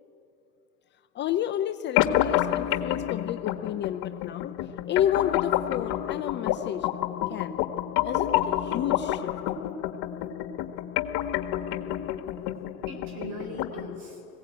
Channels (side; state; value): right; quieter; 11.6 dB